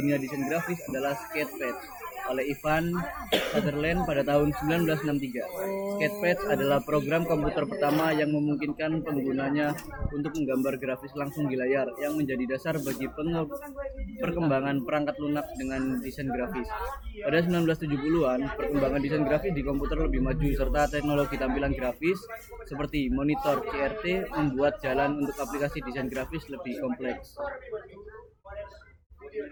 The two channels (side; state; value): both; identical; correlation 1.00